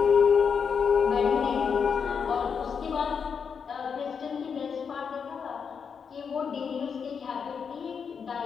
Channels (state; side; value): quieter; right; 6.4 dB